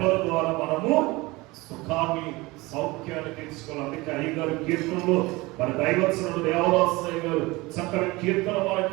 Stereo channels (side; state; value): left; quieter; 22.2 dB